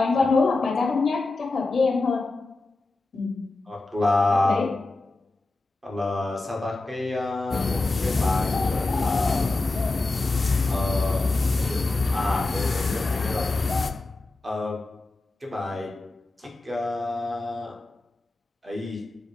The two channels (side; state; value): right; quieter; 3.2 dB